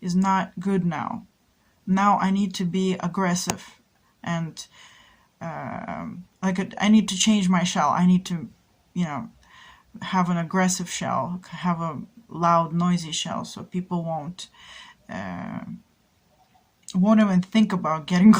is not good now. Now I need to be aggressive, and I need to change my shell. I need to, you know, have an aggressive shell, have a loud, noisy shell, so people won't even think about getting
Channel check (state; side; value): identical; both; correlation 1.00